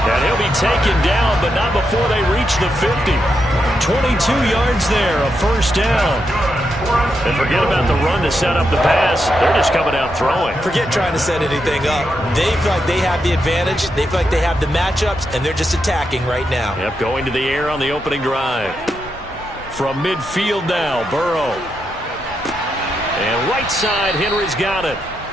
And he'll be taken down, but not before they reach the 50. 22 yards there, a first down. And forget about the run to set up the pass. They're just coming out throwing. Forget trying to set anything up. They feel like they have the advantage. They feel like they have the matchups, and they're just attacking right now. Yep, going to the air on the opening drive. From midfield now, Burrow. And right side, Henry's got it.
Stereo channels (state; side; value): normal; both; correlation 0.83